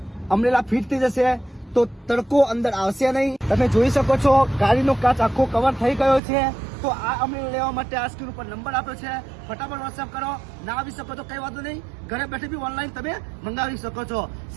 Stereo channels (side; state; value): left; drops out; at 6.2 s